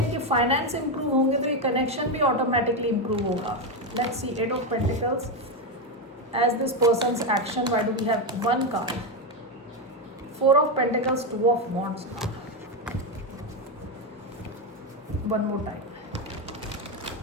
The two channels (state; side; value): normal; both; correlation 0.08